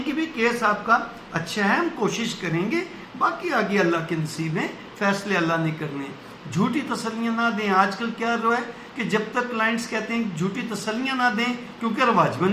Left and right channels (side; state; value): both; identical; correlation 1.00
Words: کہ بھی کیس آپ کا اچھا ہے، ہم کوشش کریں گے، باقی آگے اللہ کے نصیب ہیں، فیصلے اللہ نے کرنے ہیں۔ جھوٹی تسلیاں نہ دیں۔ آج کل کیا ہے کہ جب تک کلائنٹس کہتے ہیں جھوٹی تسلیاں نہ دیں کیونکہ رواج بن